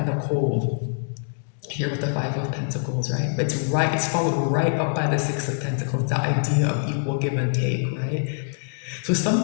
the cold here with the Five of Pentacles, right? It's followed right up by the Six of Pentacles, the idea of equal give and take, right? So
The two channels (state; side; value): silent; right; digital silence